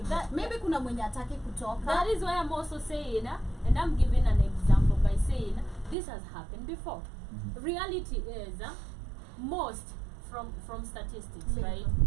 Maybe kuna mwenye ataki kutoka. That is why I'm also saying, and I'm giving an example by saying this has happened before. Reality is most from statistics, Leave. right?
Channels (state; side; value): drops out; left; at 6.0 s